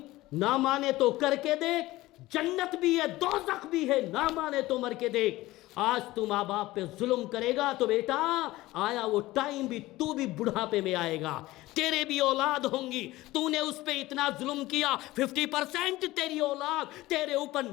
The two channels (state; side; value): quieter; right; 18.0 dB